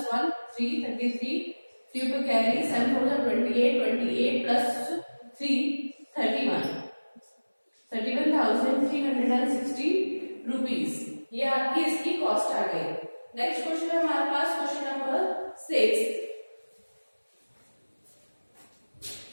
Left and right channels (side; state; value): both; inverted; correlation -1.00